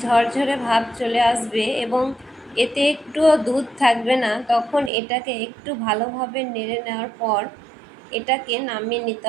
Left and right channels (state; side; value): drops out; left; at 4.9 s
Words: ঝরঝরে ভাব চলে আসবে এবং এতে একটুও দুধ থাকবে না তখন এটাকে একটু ভালোভাবে নেড়ে নেওয়ার পর এটাকে নামিয়ে নিতে